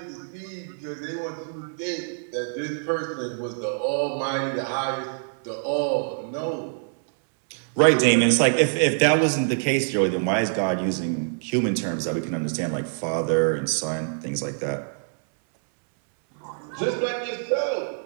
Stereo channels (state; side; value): silent; left; 62 dB below the other